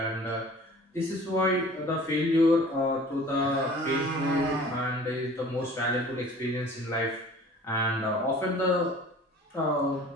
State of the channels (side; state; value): both; normal; correlation 0.46